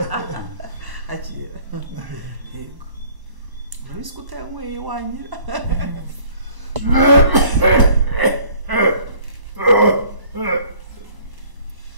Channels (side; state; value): left; late; 1.0 ms